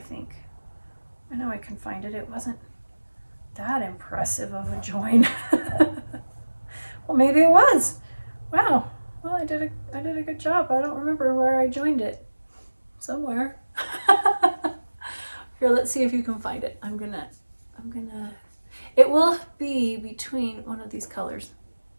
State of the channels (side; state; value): both; inverted; correlation -1.00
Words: I know I can find it. It wasn't that impressive of a join. Well, maybe it was. Wow. Well, I did a good job. I don't remember where I joined it. Somewhere. Here, let's see if you can find it. I'm gonna, it will be between one of these colors.